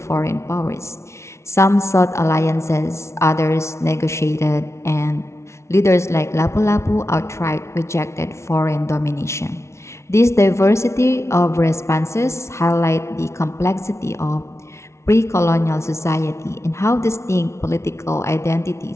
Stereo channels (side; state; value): right; late; 0.13 ms